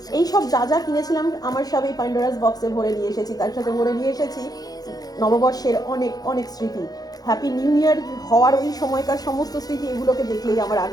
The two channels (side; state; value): right; late; 0.19 ms